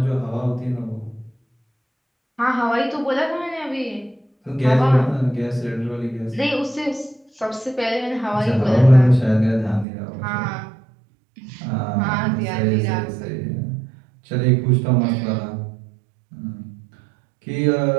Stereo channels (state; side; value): drops out; left; at 9.9 s